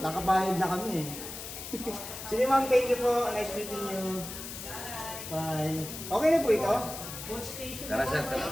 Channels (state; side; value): noise; left; hiss, 9 dB below the sound